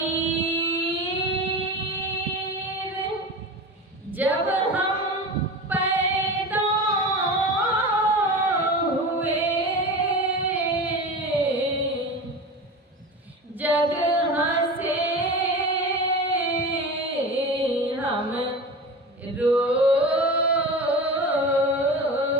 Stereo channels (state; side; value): normal; both; correlation 0.30